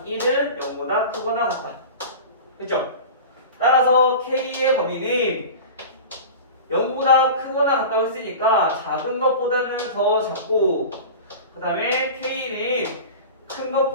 1은 0보다 크거나 같다. 됐죠? 따라서 k의 범위는 0보다 크거나 같다고 했으니까 작은 것보다는 더 작고, 그 다음에 k는 큰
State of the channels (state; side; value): inverted; both; correlation -0.33